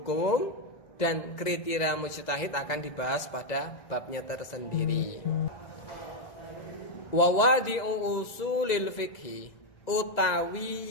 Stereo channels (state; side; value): late; right; 2.0 ms